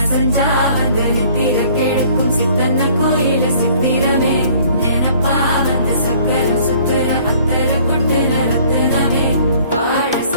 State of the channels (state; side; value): inverted; both; correlation -0.56